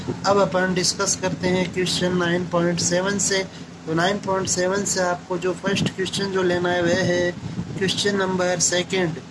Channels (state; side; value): identical; both; correlation 1.00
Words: अब अपन डिस्कस करते हैं क्वेश्चन 9.7 से। तो 9.7 से आपको जो फर्स्ट क्वेश्चन जो लेना है वह है क्वेश्चन नंबर 2।